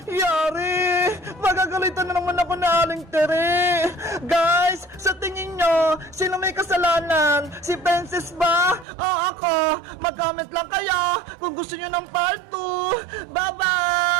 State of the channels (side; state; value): left; drops out; at 8.8 s